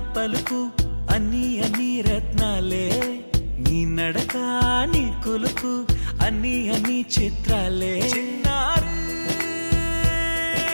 పలుకు అన్ని అన్ని రత్నాలే నీ నడక నీ కులుకు అన్ని అన్ని చిత్రాలే చిన్నారు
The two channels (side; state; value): both; inverted; correlation -1.00